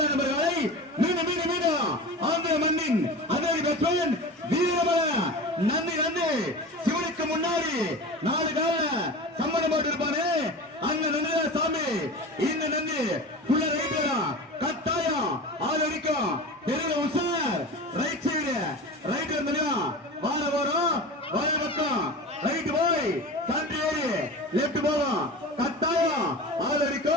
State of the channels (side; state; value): both; normal; correlation 0.32